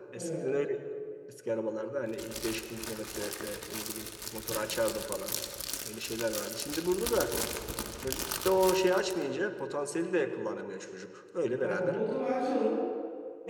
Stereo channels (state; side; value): identical; both; correlation 1.00